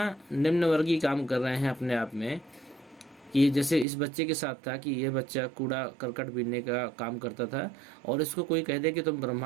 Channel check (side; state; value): left; drops out; at 3.9 s